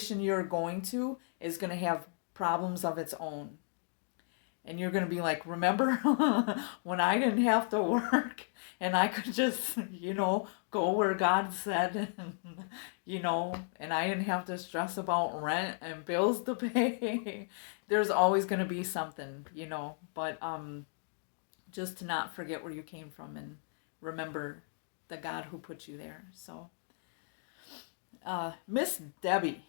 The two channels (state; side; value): silent; right; 55 dB below the other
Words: you're going to is going to have problems of its own. And you're going to be like, remember when I didn't have to work and I could just, go where God said, and I didn't have to stress about rent and bills to pay. There's always going to be something, but just to not forget where you came from and remember the God who put you there. So, Miss Debbie.